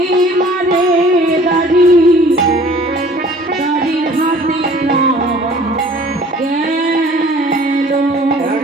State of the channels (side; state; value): both; normal; correlation 0.51